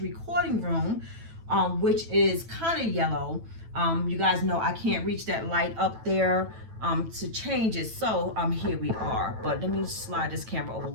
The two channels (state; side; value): late; left; 9.0 ms